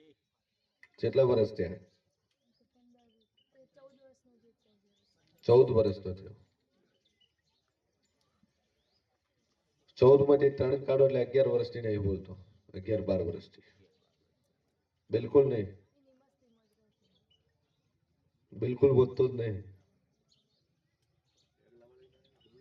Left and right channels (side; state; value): both; identical; correlation 1.00